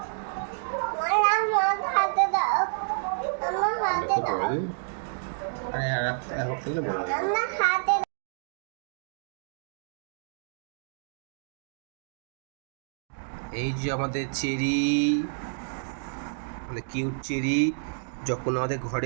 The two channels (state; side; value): silent; left; digital silence